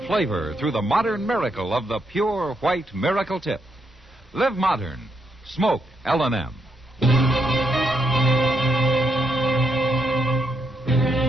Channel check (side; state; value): both; normal; correlation 0.79